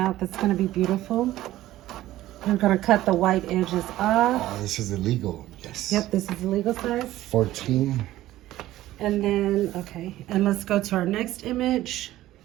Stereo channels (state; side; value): quieter; left; 15.0 dB